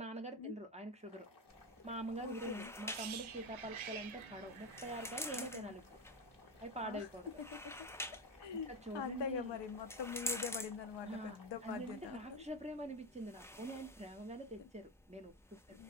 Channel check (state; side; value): normal; both; correlation 0.17